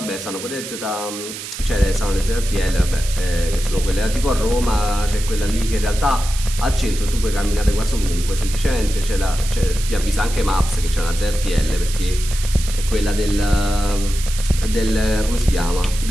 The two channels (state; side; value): noise; right; hiss, 10 dB below the sound